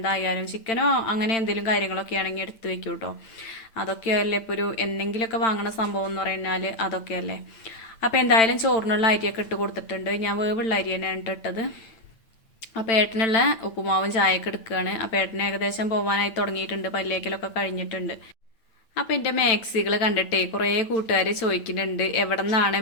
ചിക്കനോ അങ്ങനെ എന്തെങ്കിലും കാര്യങ്ങളൊക്കെ ആണെങ്കിൽ എടുത്ത് വെക്കും കേട്ടോ. അതൊക്കെയല്ലേ ഇപ്പോൾ ഒരു എന്തെങ്കിലുമൊക്കെ വാങ്ങണ സംഭവം എന്ന് പറഞ്ഞാൽ അതൊക്കെയല്ലേ. അപ്പോൾ എന്തായാലും ചോറിനുള്ള അരിയൊക്കെ ഇട്ട് കൊടുത്തിട്ടുണ്ട്. ഞാൻ വേവുള്ള അരി തന്നെയാണ് ഇട്ടത്. അപ്പോൾ ഏട്ടനുള്ള ഉപ്പുമാവും ചായയൊക്കെ എടുക്കുകയാണ്. അപ്പോൾ ഏട്ടന് ഏകദേശം പോകാനായി തുടങ്ങിയിട്ടുണ്ട്, പല്ലേക്കലൊക്കെ കഴിഞ്ഞിട്ടുണ്ട്. അപ്പോൾ എൻ്റെ മാക്സികൾ കണ്ടിട്ടേ കുറേ കൂട്ടുകാർ ചോദിക്കുന്നുണ്ട് എവിടെ നിന്നാണ്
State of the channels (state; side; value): late; right; 8.9 ms